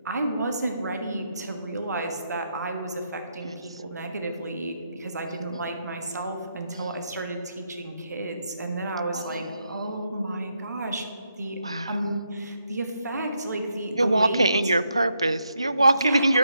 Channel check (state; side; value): inverted; both; correlation -0.79